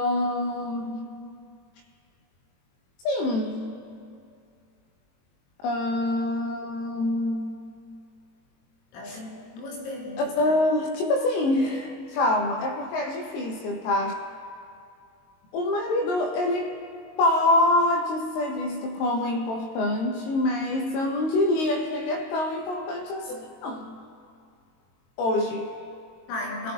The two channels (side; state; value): right; late; 22 ms